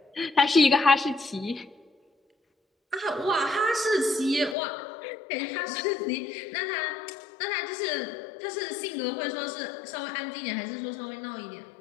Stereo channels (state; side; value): drops out; right; at 4.5 s